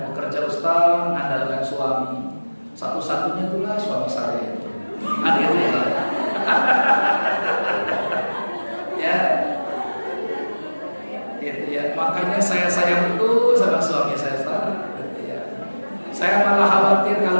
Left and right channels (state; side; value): inverted; both; correlation -1.00